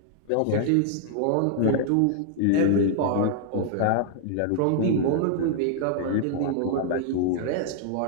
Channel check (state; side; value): different; both; correlation -0.01